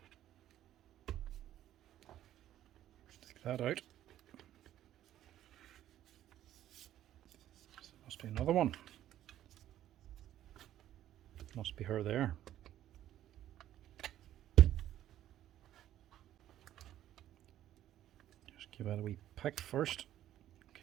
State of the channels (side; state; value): left; quieter; 12.4 dB